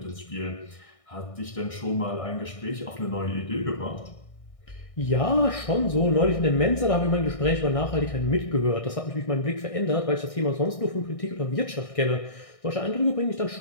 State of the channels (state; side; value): late; right; 1.6 ms